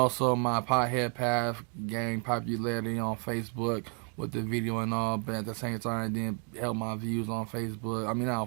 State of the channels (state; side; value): quieter; left; 39.1 dB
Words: my pothead path gained popularity on Facebook with the video and all. But at the same time, it didn't help my views on Facebook. I mean, not on